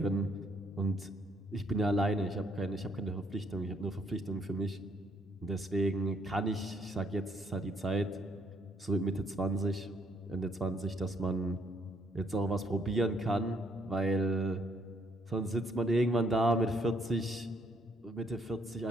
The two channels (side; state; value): both; normal; correlation 0.69